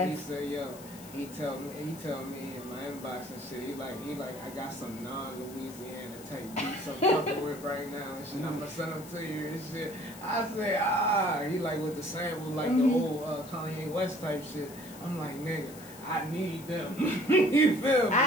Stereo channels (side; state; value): left; noise; hiss, 18 dB below the sound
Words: He said, yo. He tell me in my inbox and shit, he like, I got some non-Louisiana type beats I'm fucking with right now and shit. I'm gonna send them to you and shit. I say, he like with the sample, like the old Kanye West type shit. I'm like, nigga, I need them. You feel me?